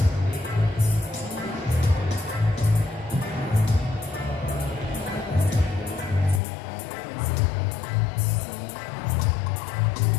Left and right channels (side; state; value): right; drops out; at 6.4 s